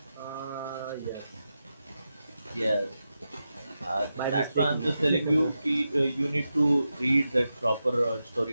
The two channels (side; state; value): both; inverted; correlation -0.90